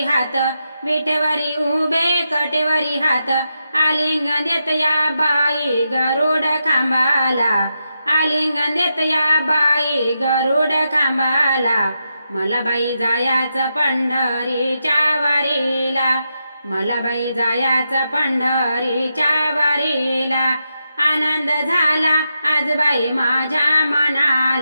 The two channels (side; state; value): both; inverted; correlation -0.86